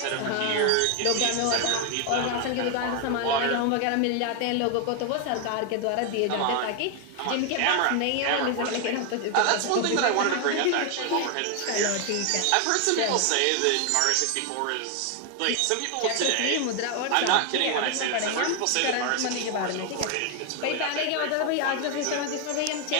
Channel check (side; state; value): both; different; correlation 0.01